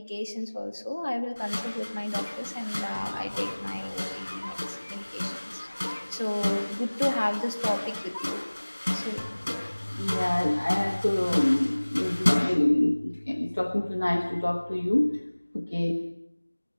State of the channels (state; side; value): inverted; both; correlation -1.00